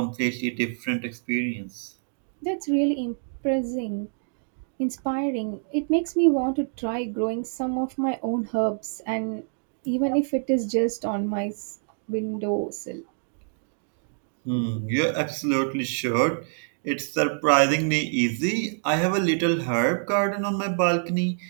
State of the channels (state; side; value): silent; left; digital silence